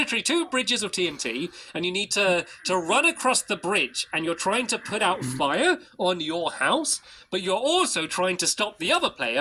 two bridges of TNT, and you need to run across the bridge, and you're trying to put out fire on your house, but you're also trying to stop the other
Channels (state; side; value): identical; both; correlation 1.00